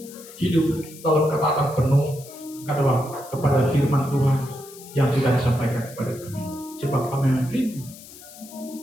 hidup dalam ketaatan penuh kepada firman Tuhan yang sudah disampaikan kepada kami. Sebab kami rindu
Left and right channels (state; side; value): noise; left; hiss, 18 dB below the sound